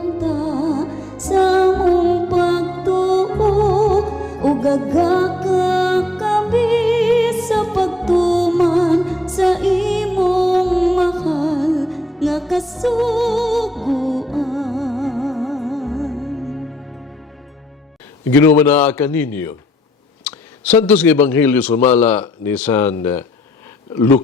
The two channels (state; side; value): normal; both; correlation 0.74